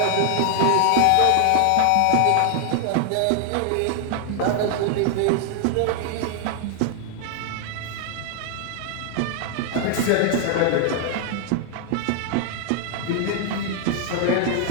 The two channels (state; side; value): different; both; correlation 0.00